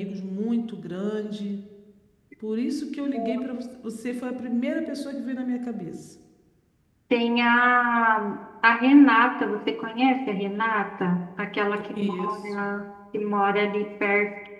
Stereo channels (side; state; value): both; identical; correlation 1.00